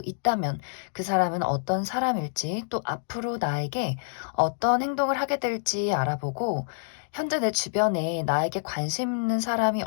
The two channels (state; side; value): silent; right; digital silence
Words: 있다면 그 사람은 어떤 사람일지, 또 앞으로 나에게 어떤 행동을 하게 될지 알아보고, 현재 내 주변에 나에게 관심 있는 사람이